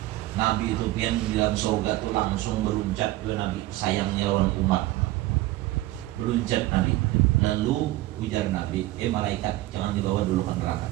Nabi itu pian di dalam surga tuh langsung beruncat ke Nabi, sayangnya lawan umat. Beruncat Nabi. Lalu ujar Nabi, malaikat jangan dibawa dulu ke neraka,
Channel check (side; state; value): left; quieter; 17.3 dB